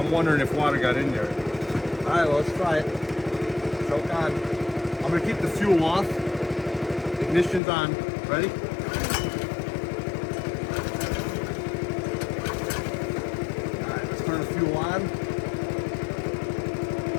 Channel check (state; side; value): drops out; right; at 7.6 s